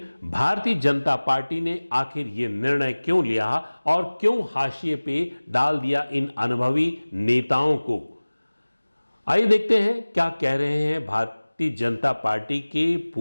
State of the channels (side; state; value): both; inverted; correlation -1.00